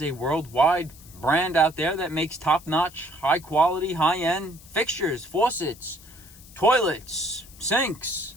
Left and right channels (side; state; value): left; noise; hiss, 21 dB below the sound